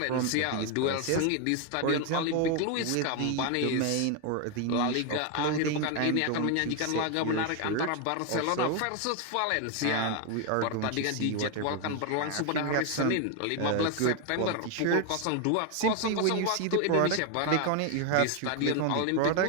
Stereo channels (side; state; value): both; different; correlation 0.01